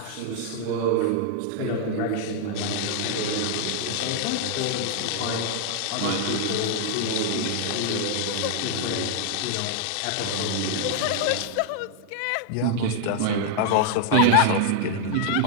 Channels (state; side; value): different; both; correlation 0.00